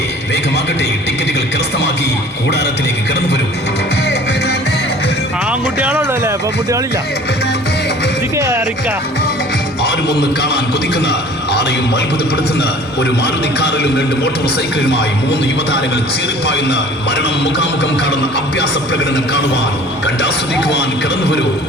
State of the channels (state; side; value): normal; both; correlation 0.48